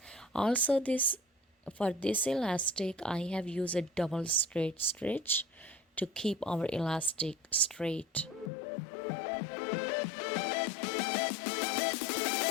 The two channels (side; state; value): right; drops out; at 8.5 s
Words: Also, this for this elastic I have used a double straight stitch to keep our elastic straight.